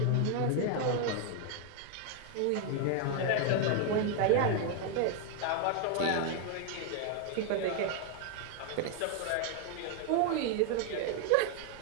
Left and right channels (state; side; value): different; both; correlation 0.01